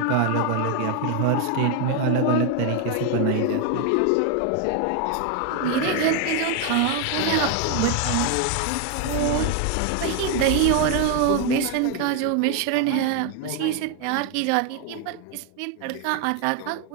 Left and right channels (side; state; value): both; different; correlation 0.01